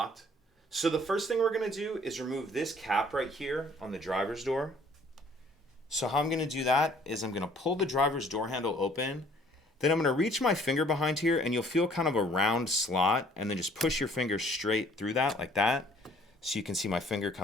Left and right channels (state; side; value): normal; both; correlation 0.57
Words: So the first thing we're going to do is remove this cap right here on the driver's door. So how I'm going to do that is I'm going to pull the driver's door handle open. Then I'm going to reach my finger behind here and you'll feel kind of a round slot, and then just push your finger straight through that like that. So you can see my finger